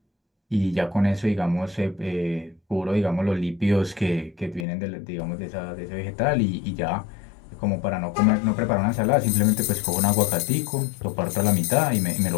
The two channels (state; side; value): drops out; right; at 4.7 s